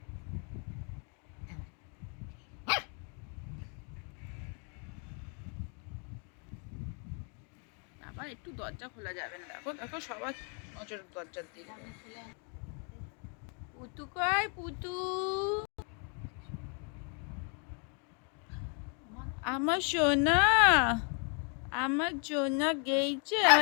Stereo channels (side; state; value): right; quieter; 38.8 dB